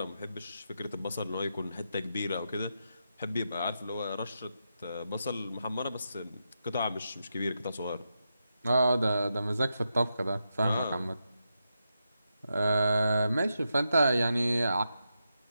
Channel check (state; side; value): inverted; both; correlation -0.86